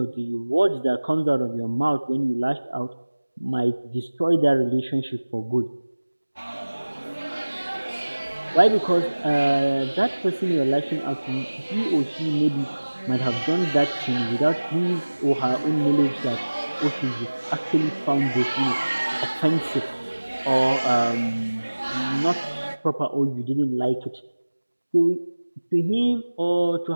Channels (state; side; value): inverted; both; correlation -1.00